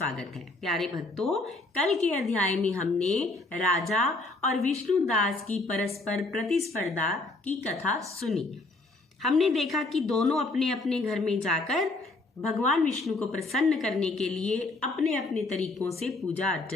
है। प्यारे भक्तों, कल के अध्याय में हमने राजा और विष्णुदास की परस्पर प्रतिस्पर्धा की कथा सुनी। हमने देखा कि दोनों अपने अपने घर में जाकर भगवान विष्णु को प्रसन्न करने के लिए अपने अपने तरीकों से पूजा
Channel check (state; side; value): quieter; right; 3.1 dB